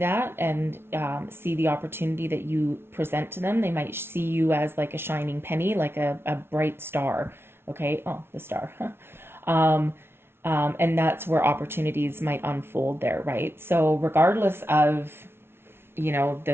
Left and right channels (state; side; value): late; left; 0.12 ms